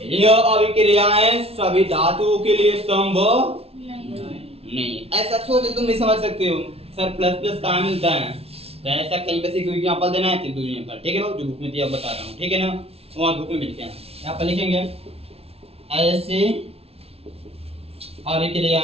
यह अभिक्रियाएं सभी धातुओं के लिए संभव नहीं। ऐसा सोच तुम नहीं समझ सकते हो, सर प्लस प्लस कहाँ मिलता है, तो ऐसा कहीं पे से कोई एग्जांपल देना है, तो एग्जांपल, ठीक है बाबू, जो बुक में दिया बता रहा हूँ, ठीक है ना, वहाँ बुक में मिलते हैं, यहाँ पर लिखेंगे ऐसे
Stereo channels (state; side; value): late; left; 0.29 ms